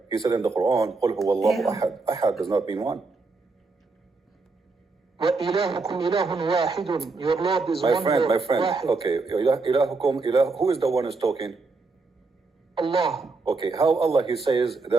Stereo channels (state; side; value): quieter; left; 3.9 dB